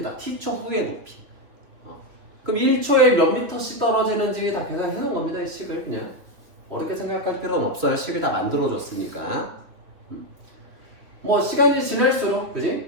t초 후의 높이. 그럼 1초에 몇 미터씩 떨어지는지 다 계산해 놓은 겁니다. 이 식을 그냥 어렵게 생각할 필요는 없어요. 식을 다 만들어줬으니까. 뭐 시간이 지날수록,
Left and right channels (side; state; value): left; late; 3.0 ms